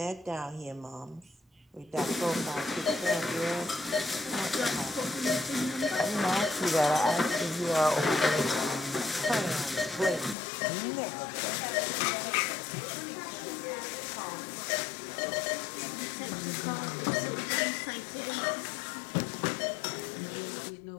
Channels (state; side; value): drops out; right; at 10.4 s